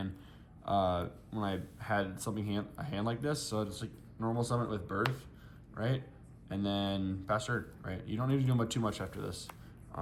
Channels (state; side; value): identical; both; correlation 1.00